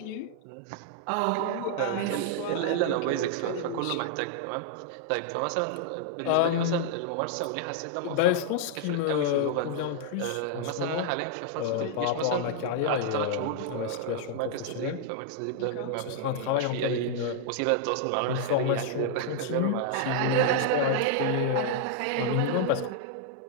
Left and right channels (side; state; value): both; different; correlation -0.01